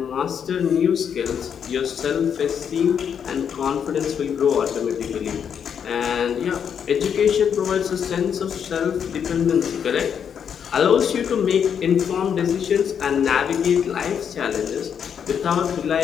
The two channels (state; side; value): quieter; right; 7.8 dB